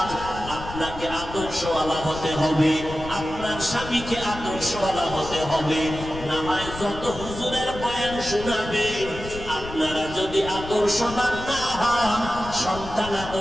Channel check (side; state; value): left; noise; rumble, 11 dB below the sound